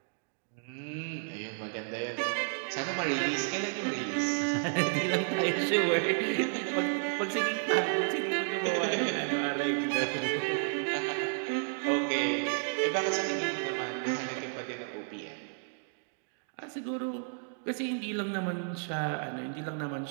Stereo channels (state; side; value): silent; left; 56 dB below the other